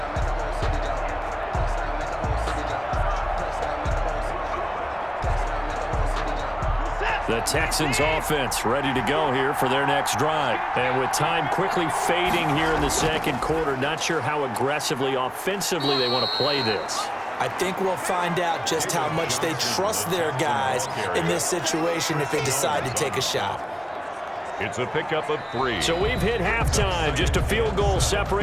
The Texans offense ready to go here for their next drive. And with time quickly fading here in the second quarter, not sure how aggressively, offensively they want to play this. I think we'll find out just how much they trust their guys in this situation if they decide to take a shot. It's a pickup of 3. So we've hit halftime. Just a field goal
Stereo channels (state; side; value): identical; both; correlation 1.00